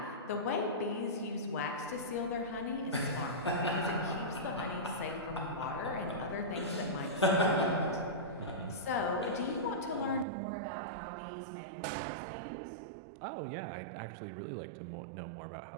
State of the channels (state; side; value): drops out; left; at 10.2 s